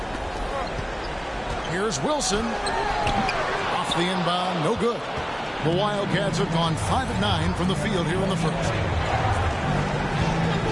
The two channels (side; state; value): both; identical; correlation 1.00